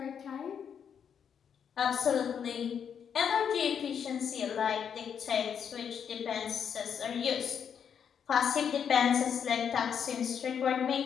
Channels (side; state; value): right; quieter; 7.7 dB